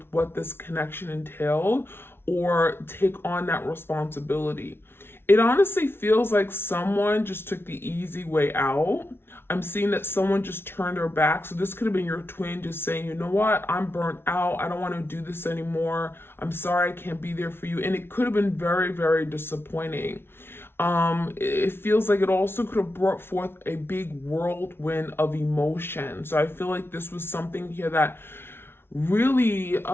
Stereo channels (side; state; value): right; late; 0.11 ms